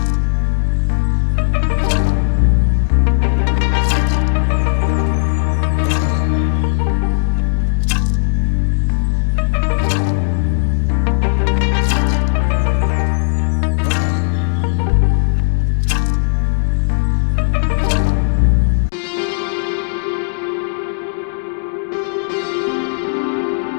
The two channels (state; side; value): silent; right; 69 dB below the other